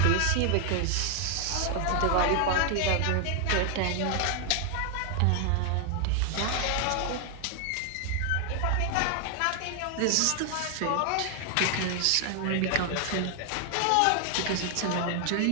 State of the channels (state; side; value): different; both; correlation 0.00